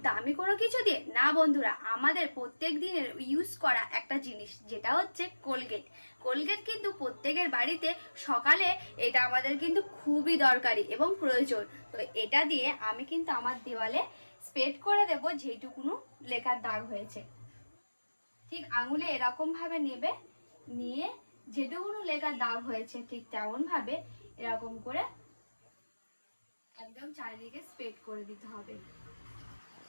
দামি কোনো কিছু দিয়ে না বন্ধুরা, আমাদের প্রত্যেক দিনের ইউজ করা একটা জিনিস যেটা হচ্ছে কোলগেট। কোলগেট কিন্তু প্রত্যেকের বাড়িতে সকালে এটা আমাদের কিন্তু খুবই দরকারি এবং প্রয়োজন। তো এটা দিয়ে আমি কিন্তু আমার দেওয়ালে স্প্রেড করে দেব যেইটুকুনো লেখার দাগ হয়েছে। ঠিক আঙুলে এরকম ভাবে নেবে, নিয়ে যেটুকুনো লেখার দাগ হয়েছে ঠিক তেমন ভাবে এরকম করে একদম চারিদিকে স্প্রেড করে দিতে হবে।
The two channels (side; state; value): both; inverted; correlation -1.00